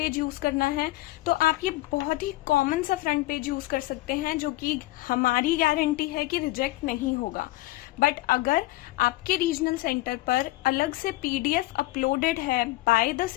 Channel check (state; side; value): quieter; right; 18.5 dB